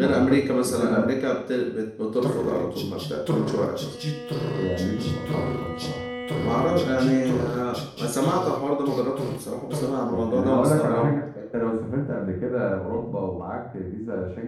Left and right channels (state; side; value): identical; both; correlation 1.00